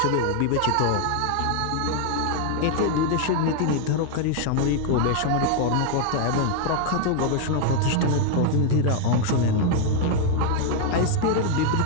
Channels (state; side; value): different; both; correlation 0.00